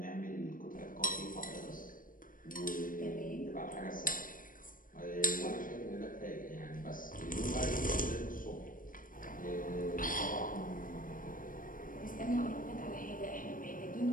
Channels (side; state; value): right; late; 0.40 ms